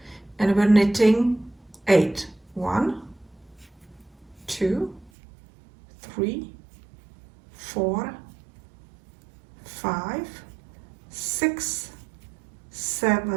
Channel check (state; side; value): drops out; left; at 5.1 s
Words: and we're knitting 8. 1, 2, 3, 4, 5, 6,